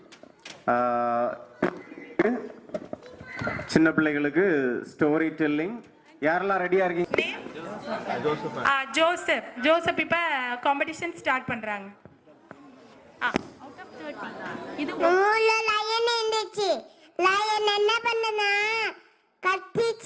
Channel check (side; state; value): both; identical; correlation 1.00